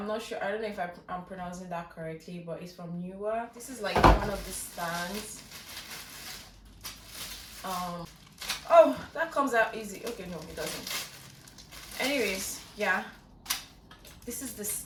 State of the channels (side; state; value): both; identical; correlation 1.00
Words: not sure, I don't know if I'm pronouncing that correctly, but it's from Neewer. This is like one of the stands. Oh, that comes out easy. Okay, no, it doesn't. Anyways, yeah, this is the